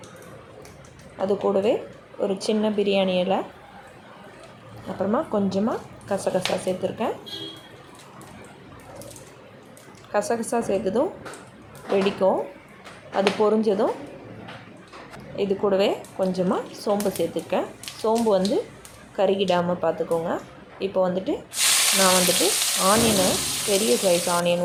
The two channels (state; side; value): identical; both; correlation 1.00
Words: அது கூடவே ஒரு சின்ன பிரியாணி இலை, அப்புறமா கொஞ்சமாக கசகசா சேர்த்துருக்கேன். கசகசா சேர்த்ததும் வெடிக்கும். அது பொரிஞ்சதும் இது கூடவே கொஞ்சமாக சோம்பு சேர்த்துருக்கேன். சோம்பு வந்து கருகிடாமல் பார்த்துக்கோங்க. இப்போ வந்துட்டு நான் ஆனியனை, பெரிய சைஸ்